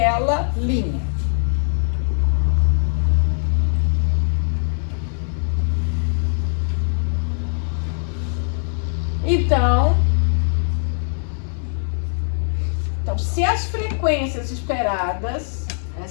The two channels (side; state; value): right; silent; digital silence